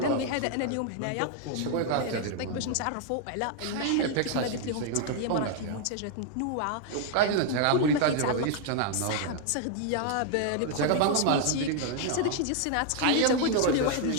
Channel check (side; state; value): both; different; correlation 0.00